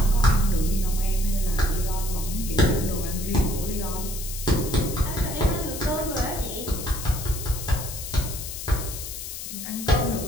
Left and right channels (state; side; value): noise; left; hiss, 8 dB below the sound